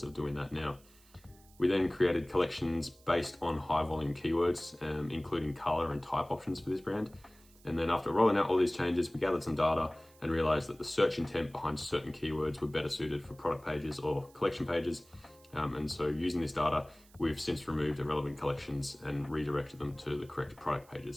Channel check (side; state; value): right; noise; hiss, 27 dB below the sound